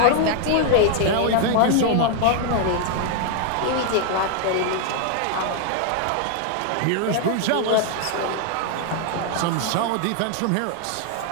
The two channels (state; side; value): different; both; correlation 0.00